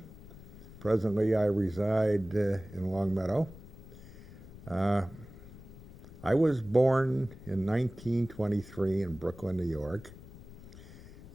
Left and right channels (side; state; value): left; noise; rumble, 17 dB below the sound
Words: Presently, I reside in Longmeadow. I was born in 1923 in Brooklyn, New York,